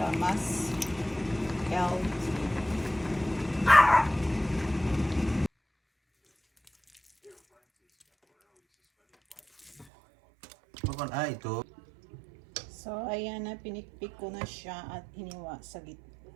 mas healthy. Ito. So, ayan na, pinikpik ko na siya at hiniwa sa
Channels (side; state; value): left; drops out; at 9.9 s